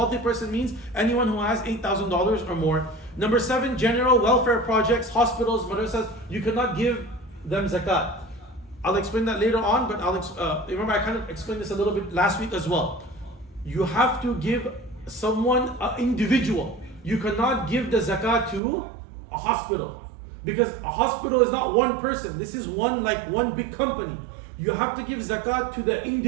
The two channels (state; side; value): drops out; left; at 18.6 s